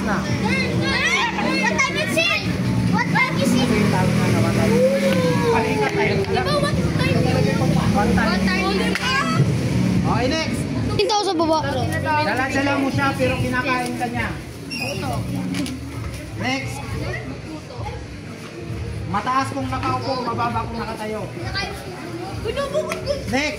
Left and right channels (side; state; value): both; identical; correlation 1.00